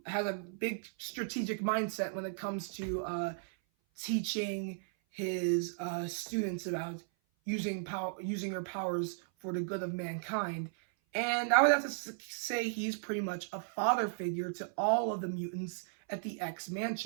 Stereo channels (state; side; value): silent; left; 54 dB below the other